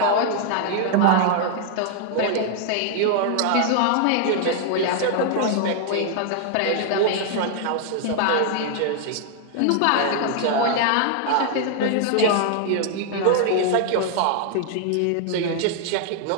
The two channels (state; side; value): different; both; correlation 0.00